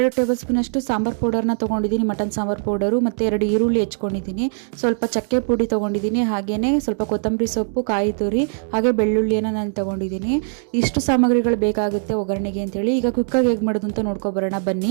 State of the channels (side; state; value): left; silent; digital silence